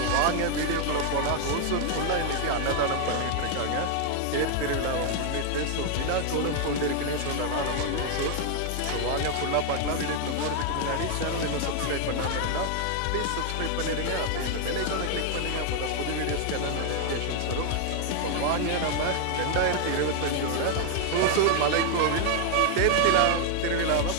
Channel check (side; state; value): both; different; correlation 0.00